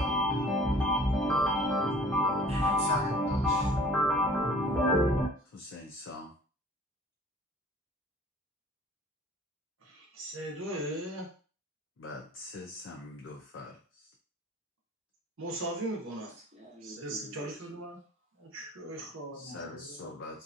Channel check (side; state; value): both; normal; correlation 0.49